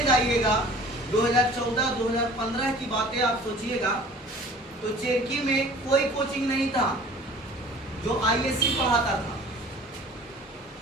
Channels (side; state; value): both; normal; correlation 0.47